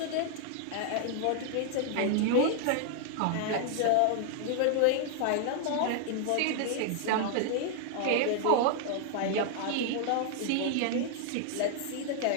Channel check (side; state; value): both; different; correlation 0.00